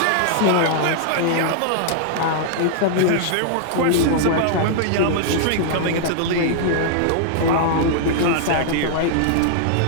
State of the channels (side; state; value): both; different; correlation -0.01